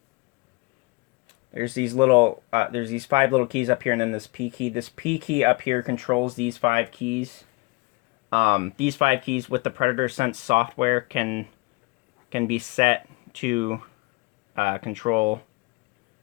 There's these 5 little keys up here, and then this P key. This P key up here controls these 5 keys. These 5 keys with the Predator Sense software can be set to control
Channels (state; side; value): quieter; right; 26.4 dB